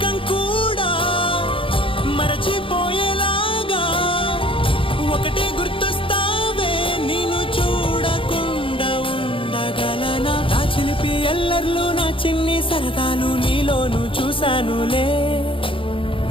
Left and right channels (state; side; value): late; right; 0.25 ms